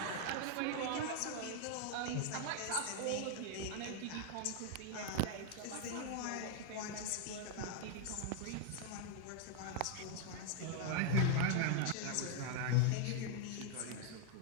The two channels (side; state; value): both; different; correlation 0.00